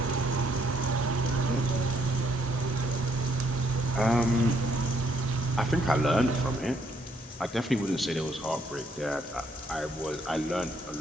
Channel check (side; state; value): both; normal; correlation 0.70